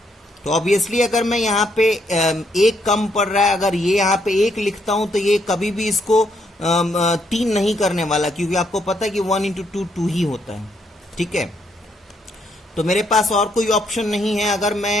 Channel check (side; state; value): both; normal; correlation 0.74